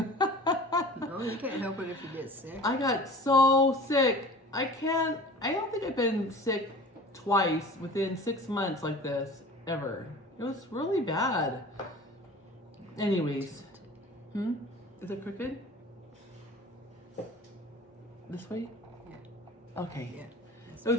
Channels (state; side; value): normal; both; correlation 0.42